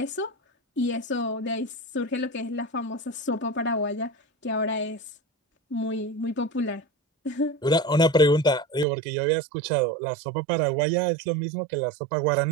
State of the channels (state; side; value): drops out; left; at 8.8 s